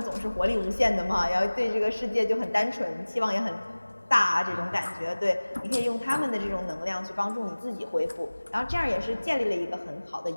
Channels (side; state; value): both; inverted; correlation -1.00